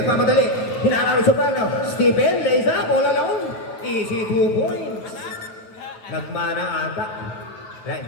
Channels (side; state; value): right; late; 8.7 ms